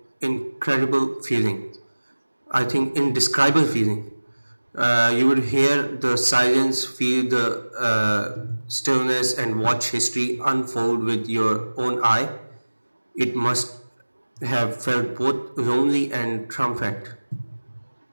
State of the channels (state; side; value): inverted; both; correlation -1.00